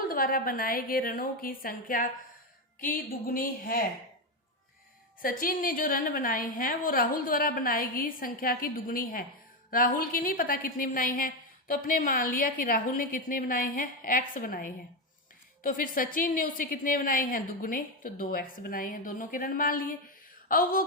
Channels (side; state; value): both; normal; correlation 0.10